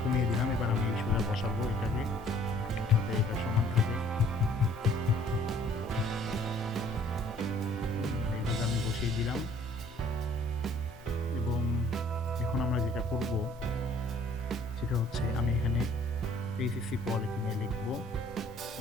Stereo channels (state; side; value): normal; both; correlation 0.58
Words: কমিয়ে দিলাম। এবার আমি এই সোজা বসাবো এটাকে, যাতে এটা সমান থাকে। দিলাম। এবং এখন আমরা যেটা করব সেটা হচ্ছে আমি এখানে এইচএসসি কোয়ালিটি নিয়ে লিখব।